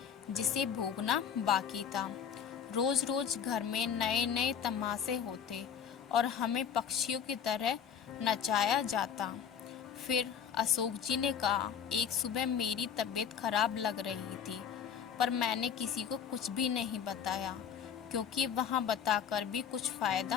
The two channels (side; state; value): right; quieter; 8.0 dB